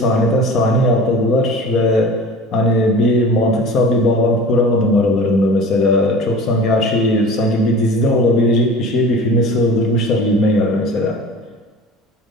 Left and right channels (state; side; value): normal; both; correlation 0.39